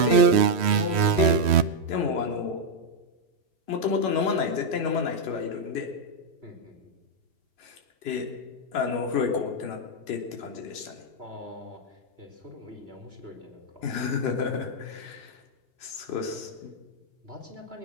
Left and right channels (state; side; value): late; left; 3.1 ms